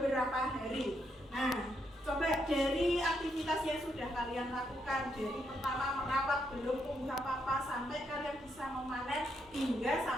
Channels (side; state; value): both; normal; correlation 0.78